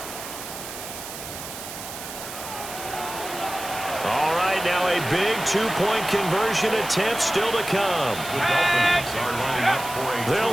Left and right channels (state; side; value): noise; right; hiss, 10 dB below the sound